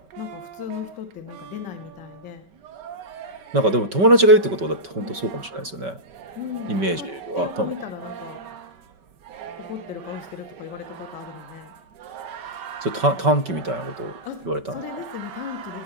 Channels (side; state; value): left; late; 5.2 ms